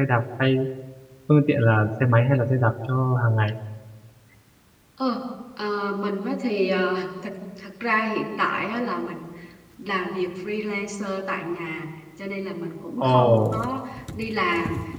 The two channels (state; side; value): identical; both; correlation 1.00